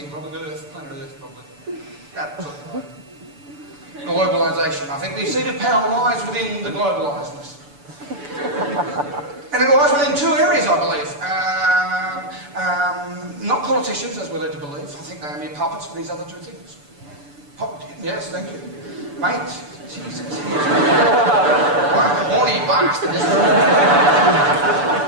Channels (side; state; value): left; late; 6.9 ms